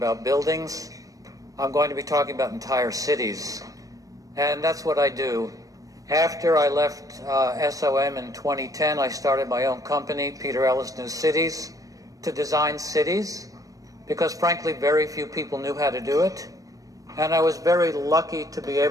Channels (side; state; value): left; late; 0.17 ms